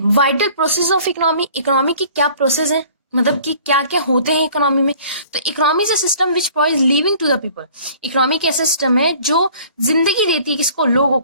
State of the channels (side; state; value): both; inverted; correlation -0.51